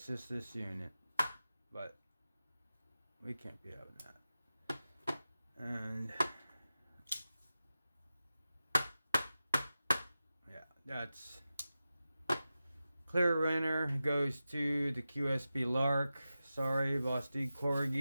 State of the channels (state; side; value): inverted; both; correlation -0.93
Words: just this unit, but we can't be having that. And yeah, that's clear winner goes to the QSP Lark. Sorry, Vosteed